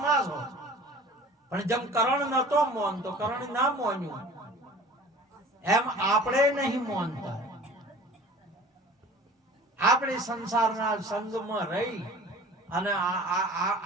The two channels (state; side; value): normal; both; correlation 0.44